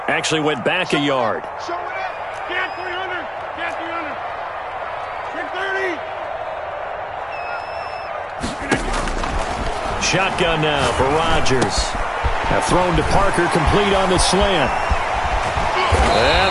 actually went back a yard. Show it up. Get 300. Get 300. Shotgun now for Rodgers. Thrown to Parker, complete on the slant.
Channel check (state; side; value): identical; both; correlation 1.00